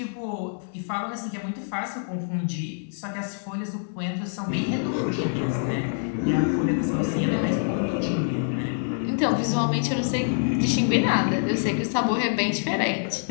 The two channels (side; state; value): right; silent; digital silence